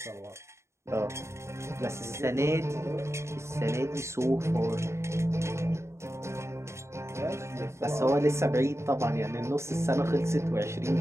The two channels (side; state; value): left; late; 0.13 ms